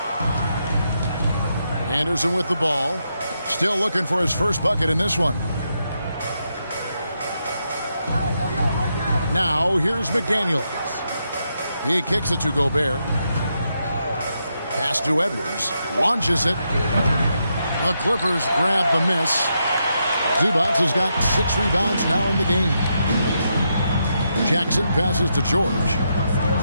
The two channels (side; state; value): both; inverted; correlation -0.82